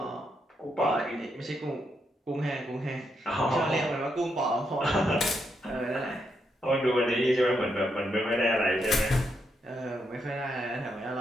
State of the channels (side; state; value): both; normal; correlation 0.80